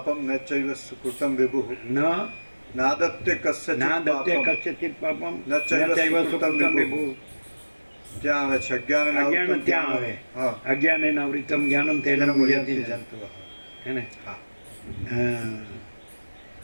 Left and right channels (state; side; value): inverted; both; correlation -1.00